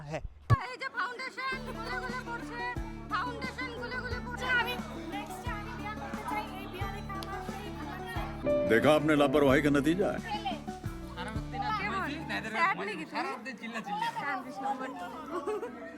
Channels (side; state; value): both; identical; correlation 1.00